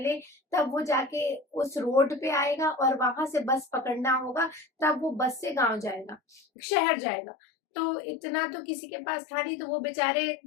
तब वो जाके उस रोड पे आएगा, और वहां से बस पकड़ना होगा, तब वो बस से गांव जाएगा, शहर जाएगा। तो इतना तो किसी के पास था नहीं, तो वो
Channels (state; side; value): drops out; right; at 6.4 s